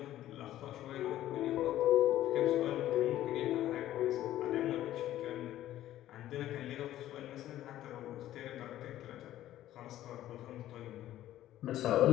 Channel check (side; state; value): right; quieter; 13.3 dB